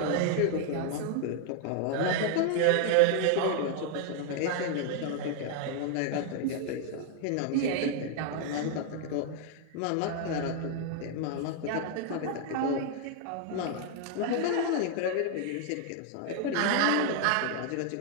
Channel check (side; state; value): both; different; correlation 0.00